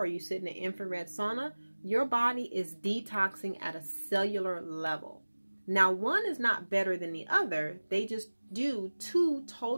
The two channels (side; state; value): both; inverted; correlation -1.00